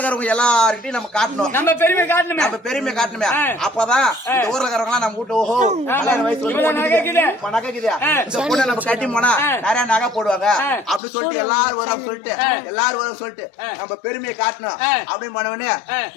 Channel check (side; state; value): right; drops out; at 11.0 s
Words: எல்லார்கிட்டையும் நம்ம காட்டணும், நம்ம பெருமை காட்டணுமே. அப்பதான் இந்த ஊர்ல இருக்கிறவங்க நம்ம வீட்டு ஓஹோ வயசு நகை கீது இந்த பொண்ணை நம்ம கட்டி போனா நிறைய நகை போடுவாங்க அப்படின்னு சொல்லிட்டு எல்லாரும் வரும் சொல்லிட்டு நம்ம பெருமையை காட்டணும் அப்படின்னு பண்ணவனே